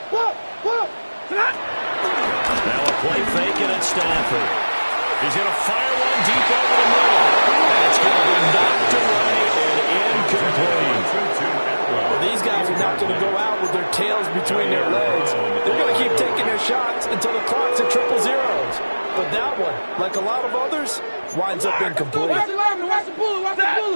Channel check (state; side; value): inverted; both; correlation -1.00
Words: whoa! Now a play fake at Stafford. He's going to fire one deep over the middle. That's going to be knocked away and incomplete. Well, these guys are not going to go out with their tails between their legs. They're going to keep taking their shots until the clock's at 0-0. But that one, like a lot of others, winds up incomplete. Watch the lineman, watch the bullet,